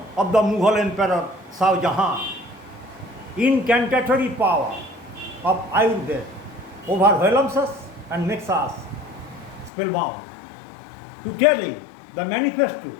of the Mughal Emperor Shah Jahan. Incantatory power of Ayurveda overwhelms us and makes us spellbound. To tell you the manifesto,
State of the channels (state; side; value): drops out; right; at 9.7 s